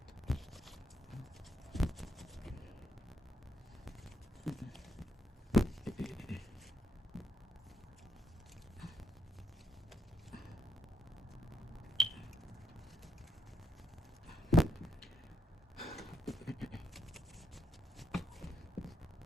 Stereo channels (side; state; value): both; normal; correlation 0.76